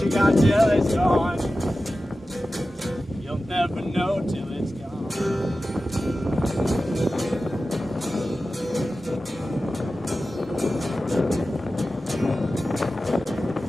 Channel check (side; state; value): both; normal; correlation 0.94